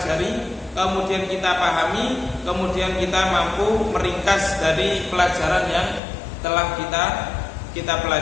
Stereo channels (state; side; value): drops out; right; at 6.0 s